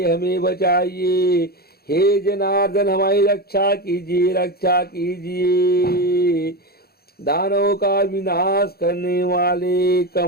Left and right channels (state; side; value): late; right; 0.45 ms